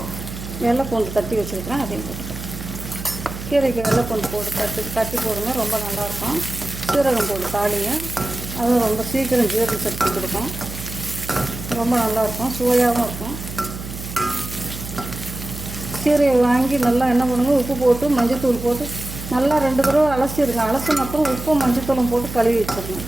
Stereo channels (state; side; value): noise; right; hum, 10 dB below the sound